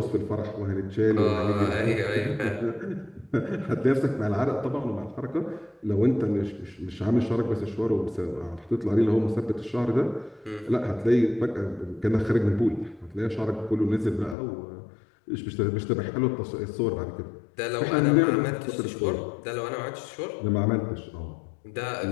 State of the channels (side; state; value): right; drops out; at 14.4 s